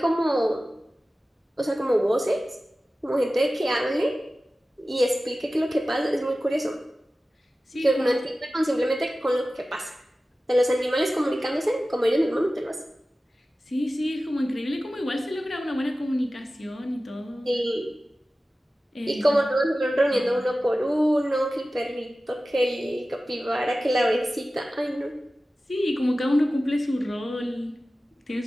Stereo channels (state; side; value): normal; both; correlation 0.95